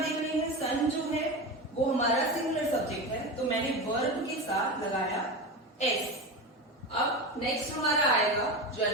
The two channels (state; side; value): normal; both; correlation 0.23